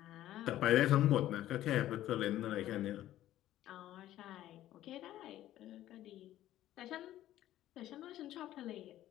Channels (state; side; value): quieter; right; 13.5 dB